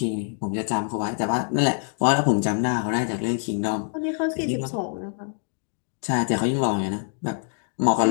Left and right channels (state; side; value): silent; right; digital silence